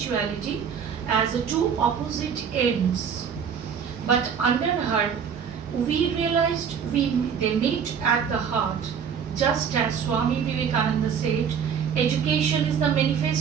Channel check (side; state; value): left; quieter; 7.2 dB